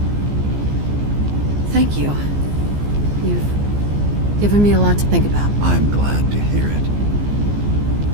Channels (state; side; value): late; left; 14 ms